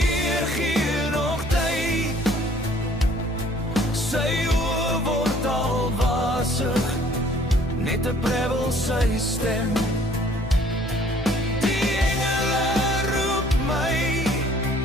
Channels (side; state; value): both; normal; correlation 0.57